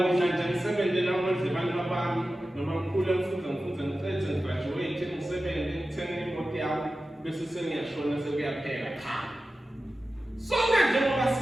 nje ngisebenze namandla abantu babami noma ngikhule ngifunze ngicede ngigraduate ngisebenze ngithenge imoto yami bese sengiyashona sekuyaphela cha sonke njengoba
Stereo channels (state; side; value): normal; both; correlation 0.94